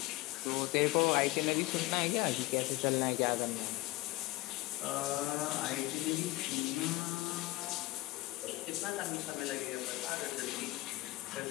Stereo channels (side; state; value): right; quieter; 19.7 dB